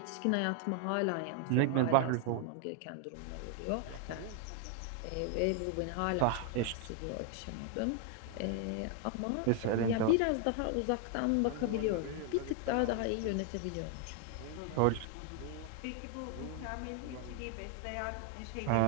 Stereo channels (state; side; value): different; both; correlation 0.00